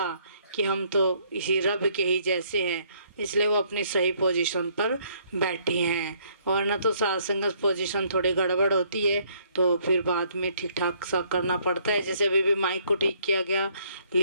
कि हम तो इसी रब के ही जैसे हैं, इसलिए वो अपनी सही पोजीशन पर बैठी हैं। वरना तो सत्संग पोजीशन थोड़ी गड़बड़ होती है तो फिर बाद में ठीक ठाक सा करना पड़ता है। जैसे अभी भी माइक को ठीक किया गया,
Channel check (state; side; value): inverted; both; correlation -0.66